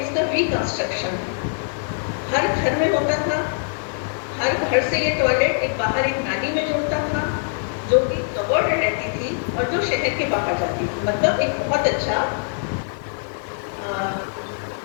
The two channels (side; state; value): right; silent; digital silence